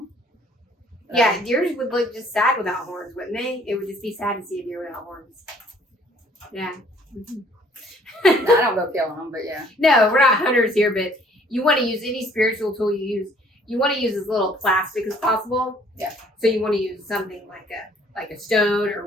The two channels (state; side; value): normal; both; correlation 0.59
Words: Yeah, deers would look just sad without horns, wouldn't they? It would just be sad to see a deer without horns. Yeah. Mm-hmm. I don't go killing them, but yeah. No, we're not hunters here, but you want to use any spiritual tool you use. You want to use as little plastic as possible. Yeah. So you want to use something like a stone